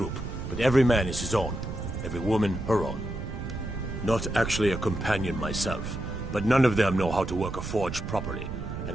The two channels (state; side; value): noise; right; rumble, 7 dB below the sound